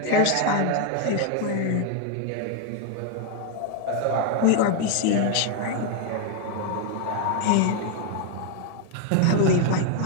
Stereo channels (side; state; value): both; different; correlation 0.01